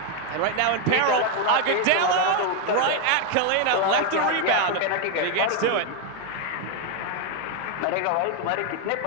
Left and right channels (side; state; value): both; different; correlation 0.01